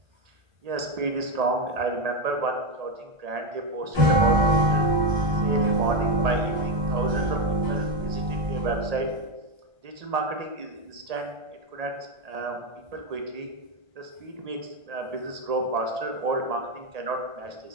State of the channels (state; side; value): late; left; 1.8 ms